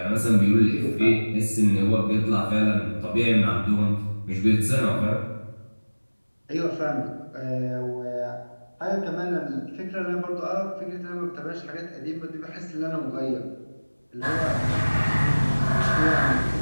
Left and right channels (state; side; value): inverted; both; correlation -1.00